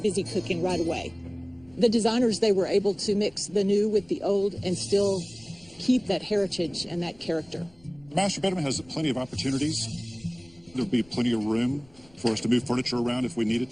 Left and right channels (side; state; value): left; noise; rumble, 28 dB below the sound